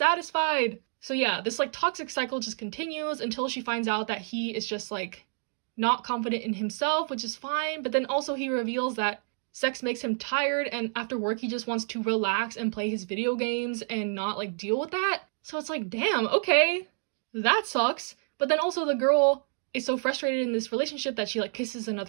So yeah, this, like, toxic cycle just continues until she finds out that he is just, like, not confident in himself, which is fine. But then also he reveals that sex makes him tired, and after work he just wants to relax and play his video games and not, like, deal with that. So it's like, damn, okay, that sucks. But then also the girl is so frustrated in this relationship that she like kisses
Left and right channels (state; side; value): silent; left; 59 dB below the other